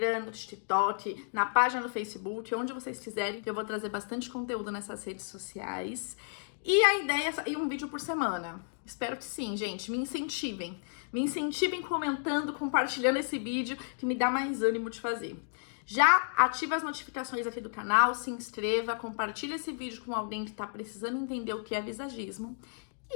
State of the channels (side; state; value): right; silent; digital silence